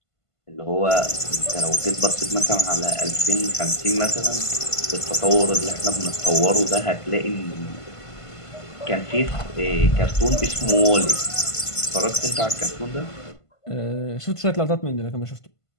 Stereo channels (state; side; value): late; right; 1.5 ms